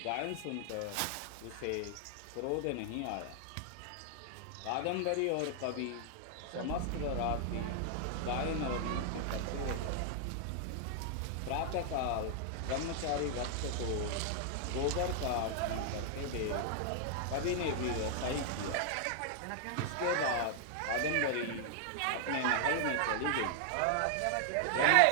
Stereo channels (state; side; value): different; both; correlation 0.00